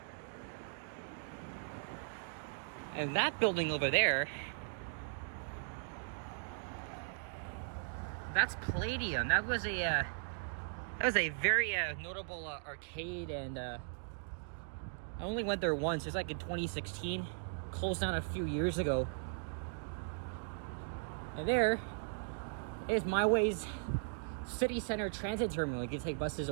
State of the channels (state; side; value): silent; left; digital silence